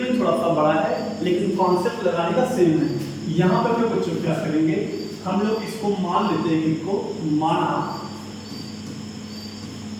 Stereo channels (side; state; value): both; identical; correlation 1.00